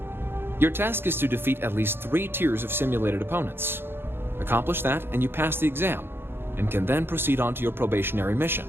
Your task is to defeat at least 3 tiers of simulated opponents. Accomplish that and you pass the exam, and can then proceed on to your probationary mission.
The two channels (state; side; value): late; left; 0.11 ms